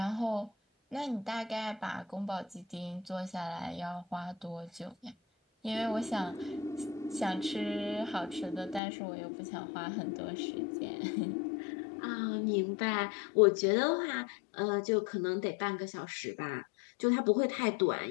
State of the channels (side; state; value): right; drops out; at 8.8 s